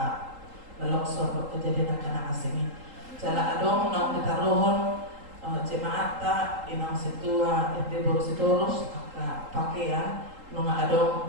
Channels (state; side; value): late; left; 3.8 ms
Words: longsor kejadian kana asing jala adong nang ditaruhon jemaat ta inang situa ente baru sitorus aka pakaian nunga